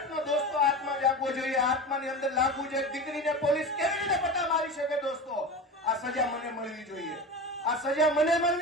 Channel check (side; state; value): both; normal; correlation 0.28